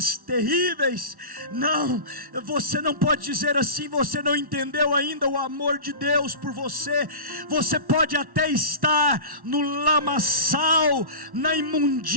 terríveis. Não, você não pode dizer assim, você não entendeu ainda o amor de Deus por você. Você pode até estar no lamaçal, na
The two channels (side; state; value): left; late; 1.1 ms